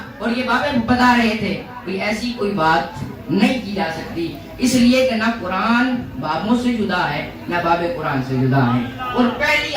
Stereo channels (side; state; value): both; identical; correlation 1.00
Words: اور یہ بابے بتا رہے تھے, کوئی ایسی کوئی بات نہیں کی جا سکتی, اس لیے کہ نہ قرآن بابوں سے جدا ہے نہ باب قرآن سے جدا ہے. اور پہلی